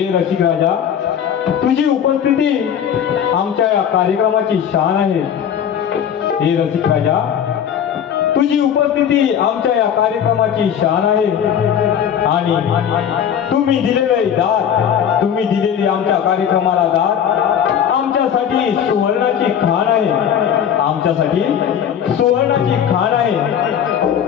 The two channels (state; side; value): quieter; right; 8.7 dB